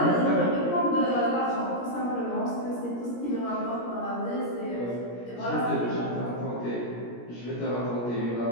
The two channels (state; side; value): late; right; 17 ms